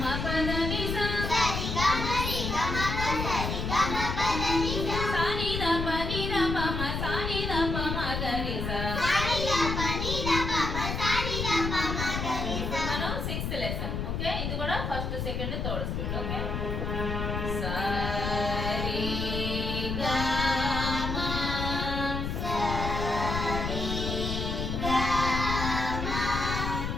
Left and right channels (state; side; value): noise; left; rumble, 2 dB below the sound